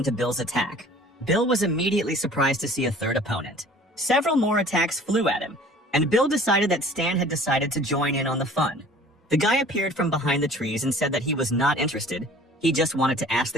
Bill's attack. Bill was immediately surprised to see a third opponent. Several more attacks flew at him, and Bill decided that Stan had decided to join in on the fun. The guy appeared from behind the trees and said that he was not interested. He just wanted to ask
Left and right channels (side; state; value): both; normal; correlation 0.48